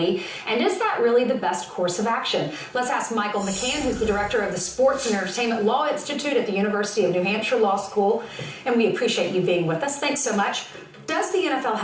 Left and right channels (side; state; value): both; identical; correlation 1.00